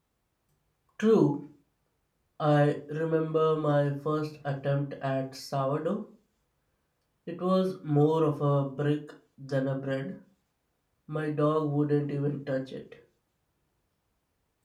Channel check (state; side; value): identical; both; correlation 1.00